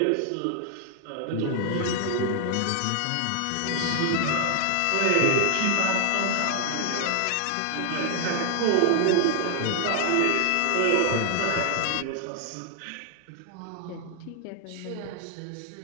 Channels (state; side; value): different; both; correlation 0.00